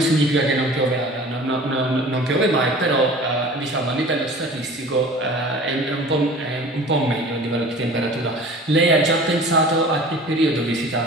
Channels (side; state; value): both; normal; correlation 0.42